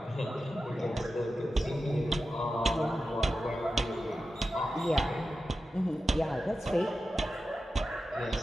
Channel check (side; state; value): both; normal; correlation 0.92